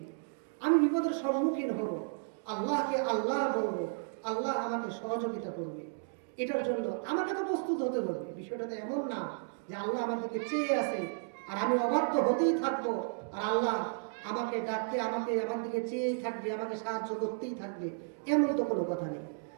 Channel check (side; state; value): left; silent; digital silence